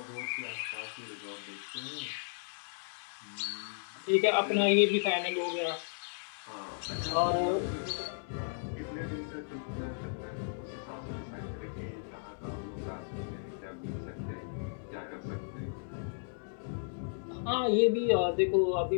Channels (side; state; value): right; silent; digital silence